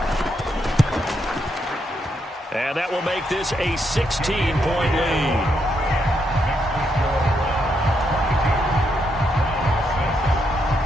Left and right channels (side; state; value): both; normal; correlation 0.79